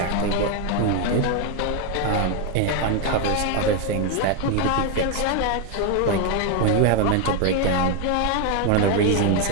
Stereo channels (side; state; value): both; different; correlation 0.01